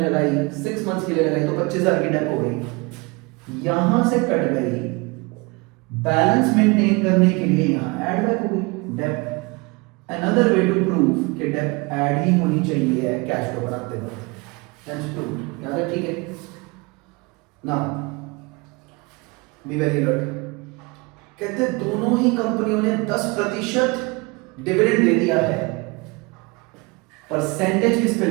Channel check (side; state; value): left; quieter; 27.0 dB